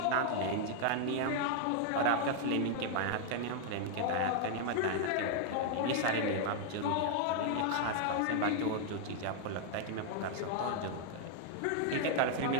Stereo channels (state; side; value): different; both; correlation 0.00